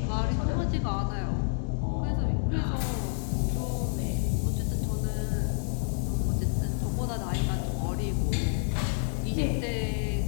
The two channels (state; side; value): silent; right; 59 dB below the other